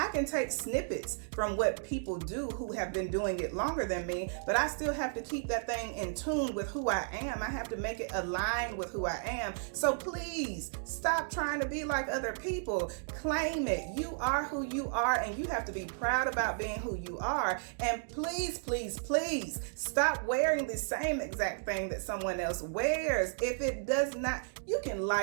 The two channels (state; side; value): silent; left; digital silence